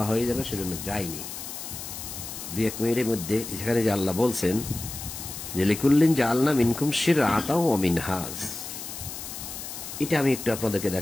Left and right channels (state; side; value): noise; left; hiss, 9 dB below the sound